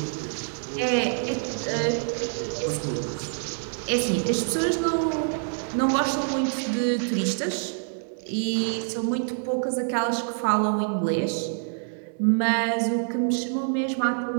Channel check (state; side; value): silent; left; digital silence